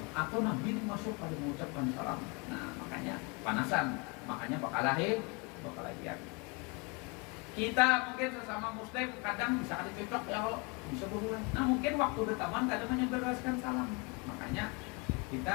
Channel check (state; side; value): quieter; right; 30.5 dB